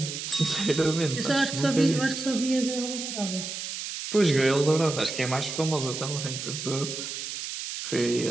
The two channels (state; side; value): noise; right; hiss, 6 dB below the sound